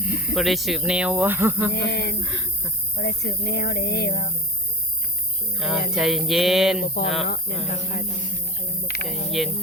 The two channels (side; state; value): both; normal; correlation 0.32